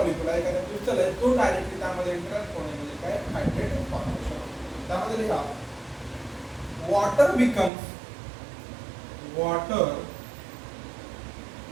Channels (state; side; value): drops out; left; at 7.7 s